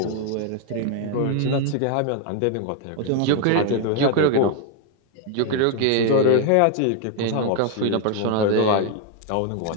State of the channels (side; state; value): both; different; correlation 0.00